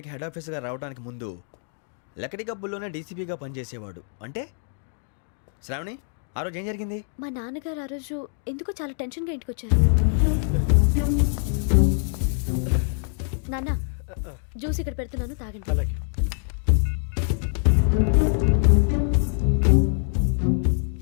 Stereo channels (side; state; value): right; silent; 62 dB below the other